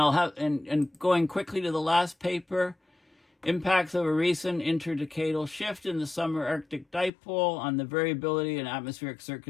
have and going quickly to the last paper, impacts of a recent interdecadal shift in the summer Arctic dipole on the variability in atmospheric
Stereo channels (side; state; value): right; drops out; at 7.1 s